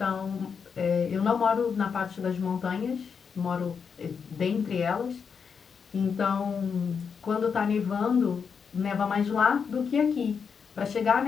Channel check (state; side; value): quieter; right; 6.2 dB